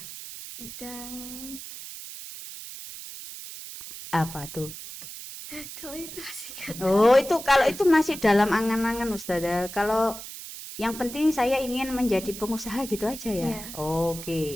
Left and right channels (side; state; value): right; noise; hiss, 11 dB below the sound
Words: Bidang Apa tuh? kalau itu masih kan. Oh, kalau itu masih dalam angan-angan Ustazah. Kalau yang penting saya ingin menjadi pengusaha gitu aja ya. Iya.